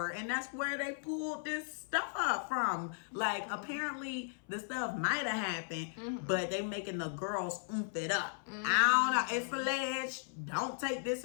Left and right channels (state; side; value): silent; right; 54 dB below the other